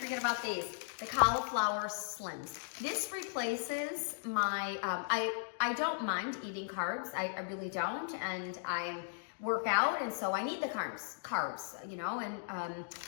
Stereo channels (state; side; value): silent; right; digital silence